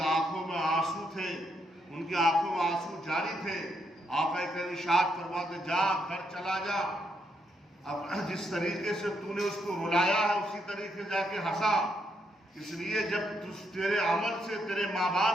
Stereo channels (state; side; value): normal; both; correlation 0.78